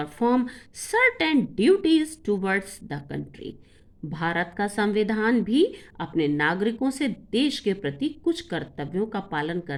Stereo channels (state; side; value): identical; both; correlation 1.00